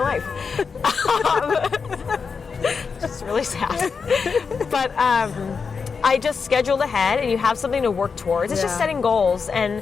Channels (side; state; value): right; quieter; 5.4 dB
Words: Just really sad. But I just scheduled ahead, and you have something to work towards. It's just setting goals, and